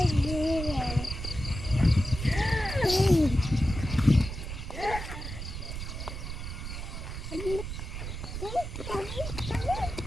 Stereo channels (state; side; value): noise; right; rumble, 7 dB below the sound